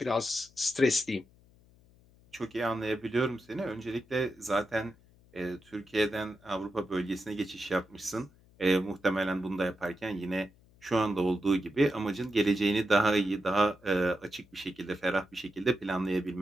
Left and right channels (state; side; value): noise; left; hum, 28 dB below the sound